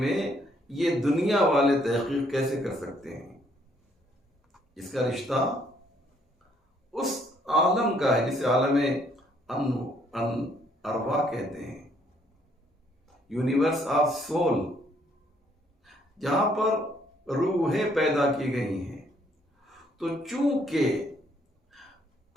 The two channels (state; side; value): normal; both; correlation 0.67